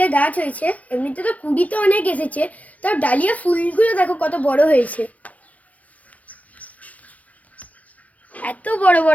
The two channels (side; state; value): right; late; 0.068 ms